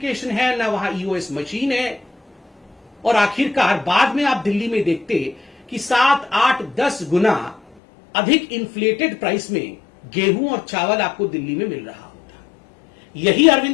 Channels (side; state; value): right; drops out; at 7.6 s